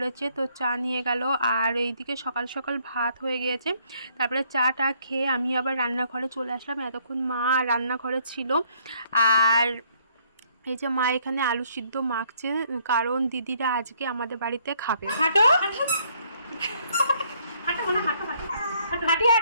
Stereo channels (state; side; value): inverted; both; correlation -0.67